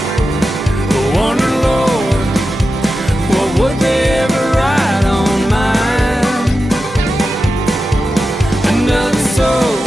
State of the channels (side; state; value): both; normal; correlation 0.91